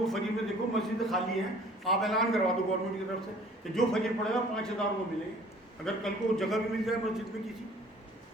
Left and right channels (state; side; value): normal; both; correlation 0.52